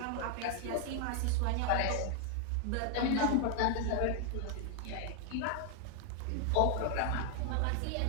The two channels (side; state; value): both; different; correlation 0.00